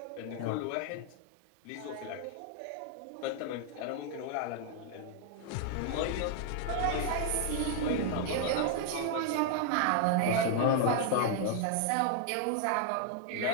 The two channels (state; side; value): different; both; correlation 0.00